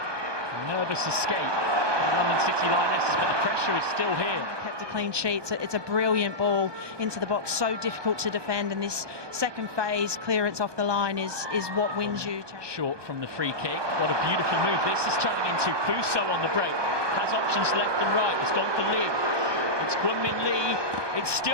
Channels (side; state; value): left; late; 1.2 ms